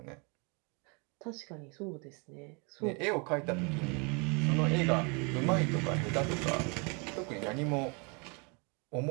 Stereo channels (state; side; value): quieter; left; 32.6 dB